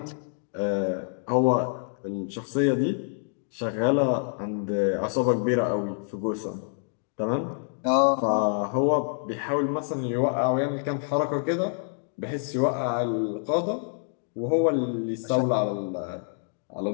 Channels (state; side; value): silent; right; digital silence